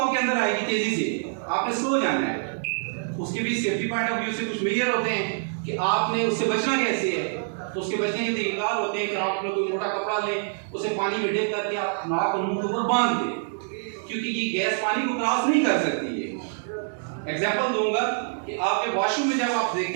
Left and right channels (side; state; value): left; silent; digital silence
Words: अंदर आएगी तेजी से, आपने स्लो जाना है। उसके भी सेफ्टी पॉइंट ऑफ व्यू से कुछ मेजर होते हैं कि आपने उससे बचना कैसे है। तो उसके बचने के तरीका होते हैं कि आप लोग कोई मोटा कपड़ा लें, उसे पानी में डिप करके आप नाक और मुंह के ऊपर बांध दें, क्योंकि ये गैस पानी को क्रॉस नहीं कर सकती है। एग्जांपल दूंगा कि आपके वॉशरूम में जब आप